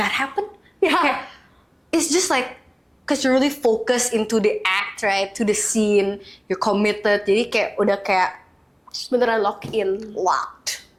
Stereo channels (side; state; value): both; identical; correlation 1.00